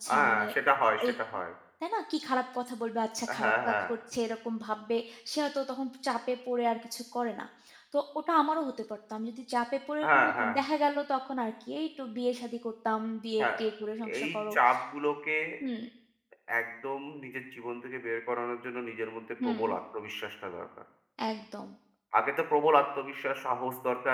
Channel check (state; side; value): identical; both; correlation 1.00